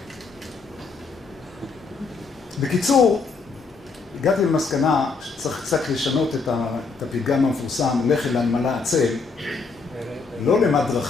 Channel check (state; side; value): quieter; right; 4.5 dB